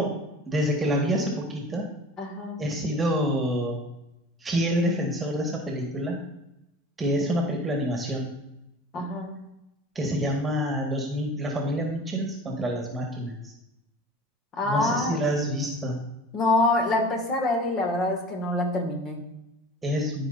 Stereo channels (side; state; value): both; normal; correlation 0.41